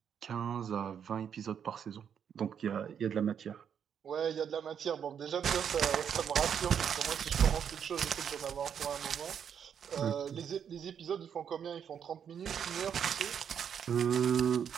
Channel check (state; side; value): quieter; left; 8.0 dB